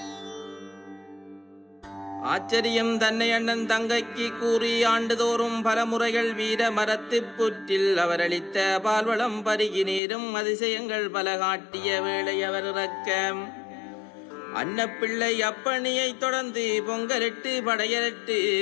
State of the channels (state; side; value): drops out; right; at 10.0 s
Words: ஆச்சரியம் தன்னை அண்ணன் தங்கைக்கு கூறி ஆண்டுதோறும் பல முறைகள் வீர மரத்து புற்றில் அவர் அளித்த பால்வளம் பருகி நீரும் அதிசயங்கள் பல காட்டிய வேளை அவர் இறக்க அன்னப்பிள்ளை அப்பணியை தொடர்ந்து பொங்கலிட்டு படையலிட்டு